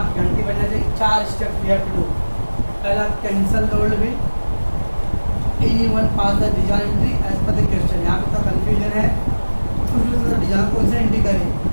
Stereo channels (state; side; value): inverted; both; correlation -1.00